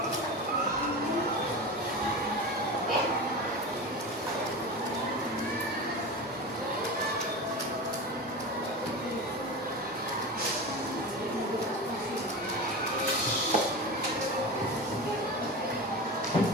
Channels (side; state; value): both; normal; correlation 0.27